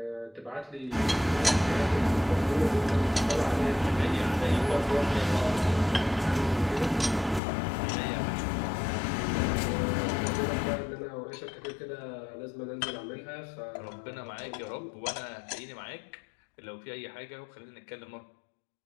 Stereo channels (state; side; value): drops out; right; at 7.4 s